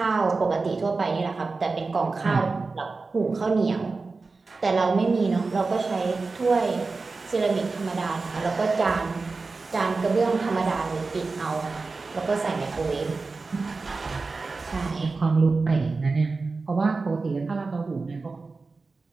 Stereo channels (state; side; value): quieter; left; 4.0 dB